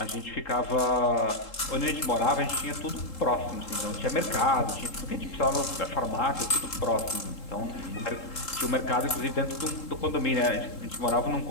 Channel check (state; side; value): late; right; 3.7 ms